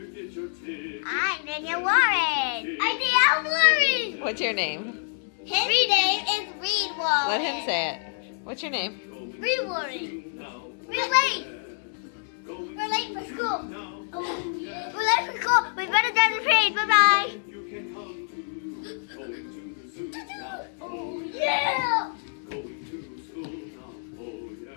get your ticket. I'm Daniel Warren. I'm Daniel Warren. What's your name? His name is Reed Warren. Let him say it. What's your name? Reed Warren. We're late. We're late for school. We're late for school. We better get the parade. Bye bye. You can come to going to the zoo now, Oh yeah. going to school now, oh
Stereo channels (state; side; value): silent; right; digital silence